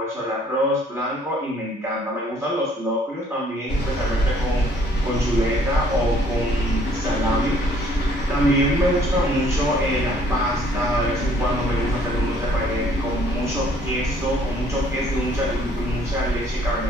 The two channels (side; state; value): both; normal; correlation 0.61